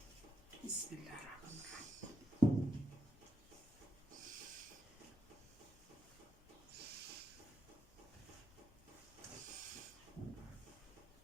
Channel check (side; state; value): both; normal; correlation 0.82